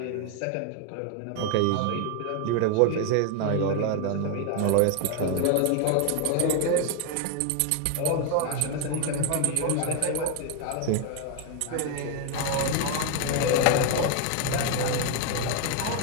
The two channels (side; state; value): both; different; correlation 0.01